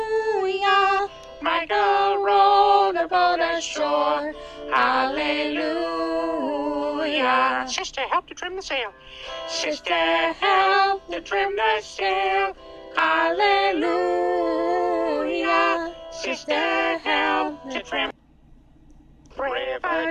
Michael rowed the boat ashore. Hallelujah. Sister, help to trim the sail. Sister, help to trim the sail. Hallelujah. Sister, help to trim.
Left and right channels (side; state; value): both; identical; correlation 1.00